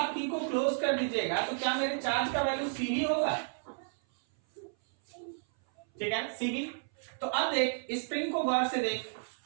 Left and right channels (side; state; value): left; silent; 56 dB below the other